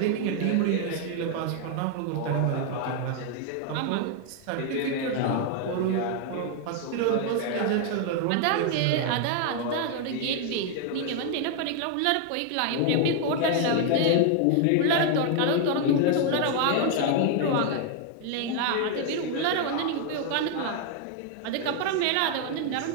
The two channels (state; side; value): different; both; correlation 0.00